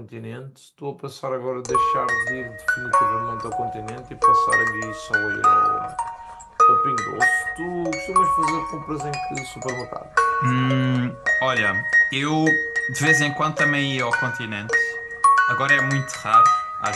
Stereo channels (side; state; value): both; identical; correlation 1.00